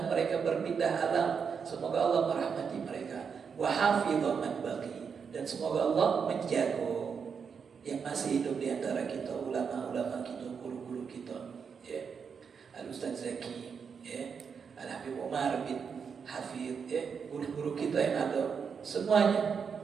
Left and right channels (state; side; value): quieter; left; 6.3 dB